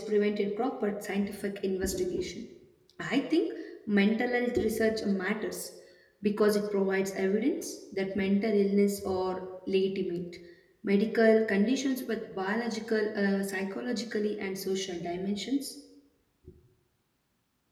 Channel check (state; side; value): identical; both; correlation 1.00